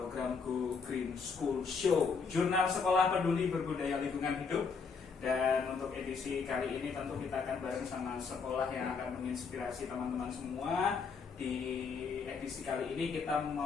Go Green School Show, jurnal sekolah peduli berbudaya lingkungan hidup. Dan untuk edisi kali ini tentu kita akan bareng sama sekolah yang akan menginspirasi teman-teman semua. Di edisi kali ini kita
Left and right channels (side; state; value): right; quieter; 5.3 dB